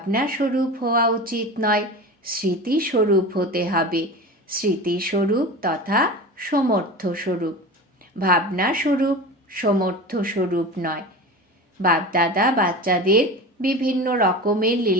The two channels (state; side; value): normal; both; correlation 0.31